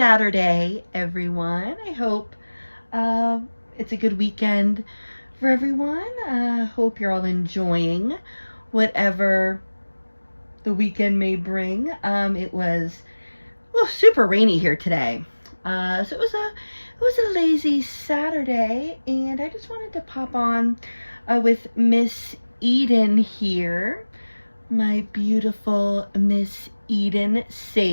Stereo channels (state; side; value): inverted; both; correlation -1.00